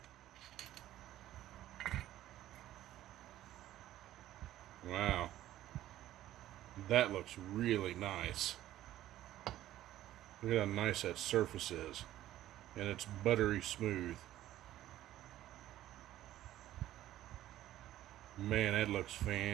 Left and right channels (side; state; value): left; quieter; 13.7 dB